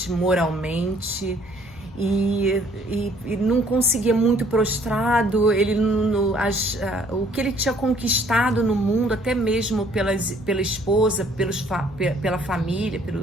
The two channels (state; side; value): normal; both; correlation 0.61